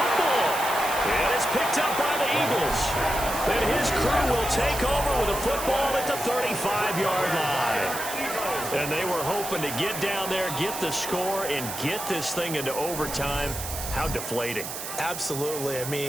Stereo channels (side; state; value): right; noise; hiss, 7 dB below the sound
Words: And it's picked up by the Eagles. And his crew will take over with a football at the 35-yard line. And they were hoping to get down there, get the score, and get this thing into overtime. How deflating. Absolutely. I